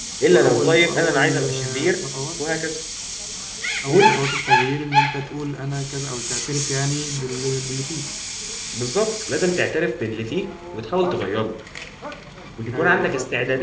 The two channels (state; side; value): identical; both; correlation 1.00